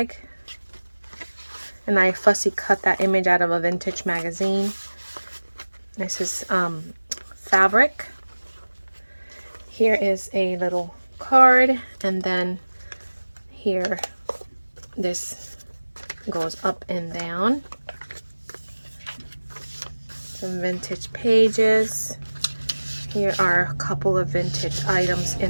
and I fussy cut that image out of a vintage magazine. This is fabric. Here is a little card, and then here this goes up and down. Some vintage pages. Here are a couple of vintage items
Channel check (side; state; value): both; inverted; correlation -1.00